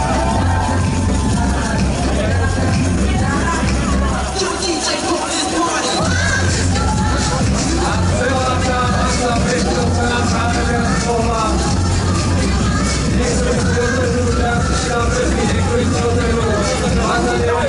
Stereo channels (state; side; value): identical; both; correlation 1.00